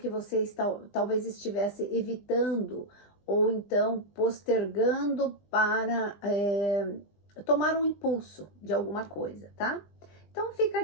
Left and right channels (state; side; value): late; right; 20 ms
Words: você talvez estivesse evitando ou então postergando para tomar um impulso de alguma coisa, tá? Então fica